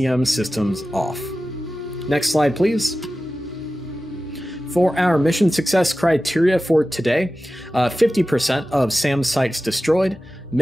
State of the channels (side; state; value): both; normal; correlation 0.94